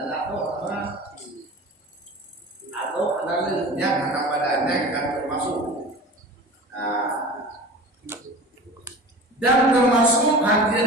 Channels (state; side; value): normal; both; correlation 0.36